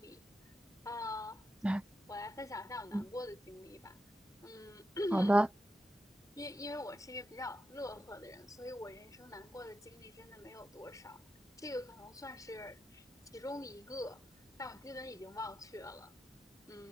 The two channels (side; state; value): both; normal; correlation 0.87